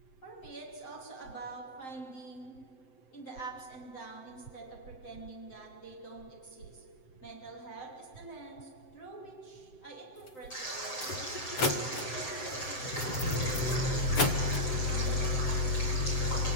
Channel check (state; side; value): late; right; 7.7 ms